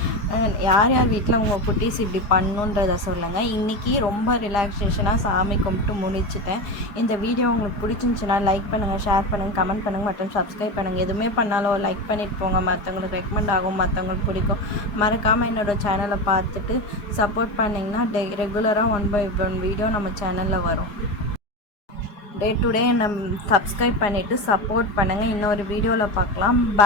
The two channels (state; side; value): late; right; 4.8 ms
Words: யார் யார் வீட்டில் உங்கள் குட்டீஸ் இப்படி பண்ணுன்றதை சொல்லுங்கள். இன்றைக்கி ரொம்ப ரிலாக்ஸேஷனாக சாமி கும்பிட்டு முடிச்சிட்டேன். இந்த வீடியோ உங்களுக்கு பிடிச்சிருந்துச்சுன்னா லைக் பண்ணுங்கள், ஷேர் பண்ணுங்கள், கமெண்ட் பண்ணுங்கள் மற்றும் சப்ஸ்கிரைப் பண்ணுங்கள். எதுவுமே பண்ணாலும் லைக் பண்ணிட்டு போங்க, மற்றவங்களுக்கு ரெக்கமெண்ட் ஆகும், மற்றவங்களுக்கு பிடிக்கும். மறக்காமல் என்னோடய சேனலை பார்த்துட்டு சப்போர்ட் பண்ணிங்கன்னா ரெகுலராக 1/1 வீடியோ நம்ம சேனலில் வரும். டே டு டே நம்ம சப்ஸ்கிரைப் பண்ணிவிட்டு சப்போர்ட் பண்ணுங்கள். இன்னொரு வீடியோவில் பார்க்கலாம்.